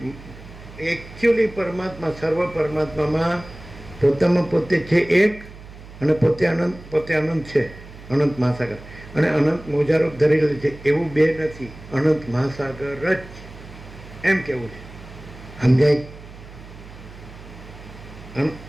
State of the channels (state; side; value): noise; right; hum, 17 dB below the sound